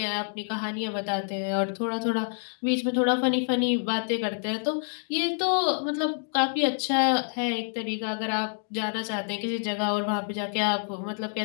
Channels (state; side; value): silent; right; 60 dB below the other